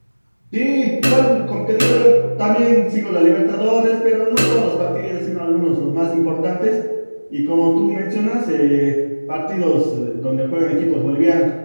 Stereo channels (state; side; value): inverted; both; correlation -1.00